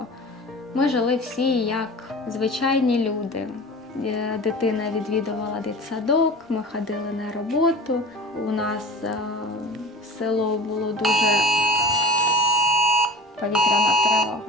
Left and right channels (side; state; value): both; normal; correlation 0.37